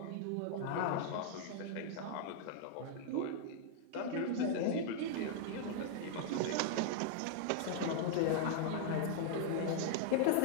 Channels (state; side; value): different; both; correlation -0.01